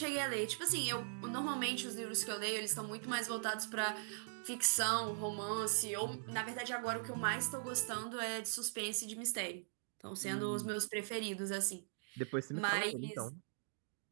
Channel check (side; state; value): left; silent; digital silence